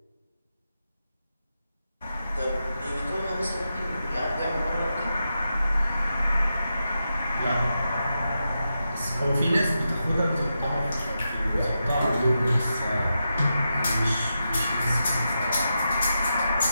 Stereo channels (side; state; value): both; inverted; correlation -0.88